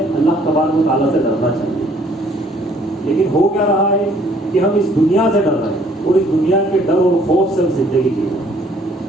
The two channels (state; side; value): normal; both; correlation 0.61